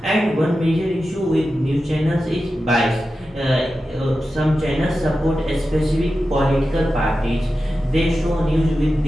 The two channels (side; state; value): both; normal; correlation 0.92